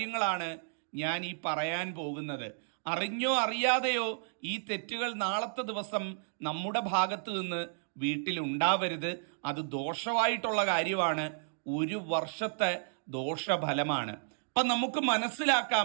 ഞാൻ ഈ പറയാൻ പോകുന്നത്. അറിഞ്ഞോ അറിയാതെയോ ഈ തെറ്റുകൾ നാളത്തെ ദിവസം നമ്മുടെ ഭാഗത്ത് നിന്ന് വീട്ടിൽ ഉണ്ടാവരുത്. അത് ദോഷമായിട്ടുള്ള കാര്യമാണ്. 1 വർഷത്തെ ദോഷഫലമാണ്. അപ്പം നമുക്ക്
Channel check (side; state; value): left; silent; digital silence